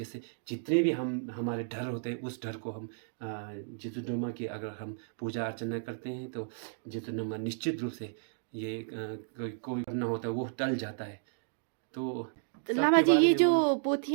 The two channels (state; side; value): silent; left; digital silence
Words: जितने भी हमारे डर होते हैं उस डर को हम जितुनमा की अगर हम पूजा अर्चना करते हैं तो जितुनमा निश्चित रूप से ये कोई करना होता है वो टल जाता है। तो लामा सबके जी बारे ये में जो वो